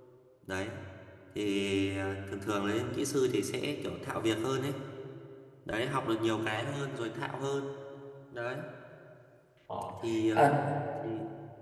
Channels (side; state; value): both; identical; correlation 1.00